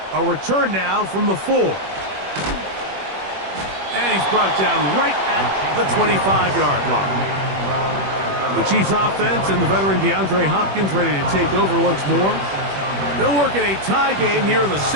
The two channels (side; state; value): left; late; 21 ms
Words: A return now from the 4. And he's brought down right at the 25-yard line. The Chiefs offense and the veteran DeAndre Hopkins ready to take over once more. They'll work in a tie game here in the